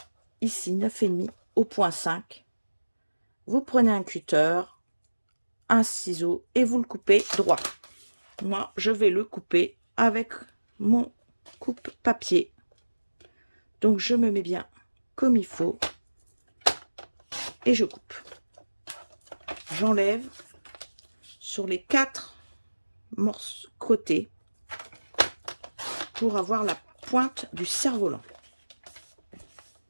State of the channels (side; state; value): both; inverted; correlation -1.00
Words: ici 9,5 au point 5. Vous prenez un cutter, un ciseau et vous le coupez droit. Moi, je vais le couper avec mon coupe-papier. Donc, je me mets bien comme il faut et je coupe. J'enlève sur les 4 morceaux côtés pour avoir la pointe du cerf-volant.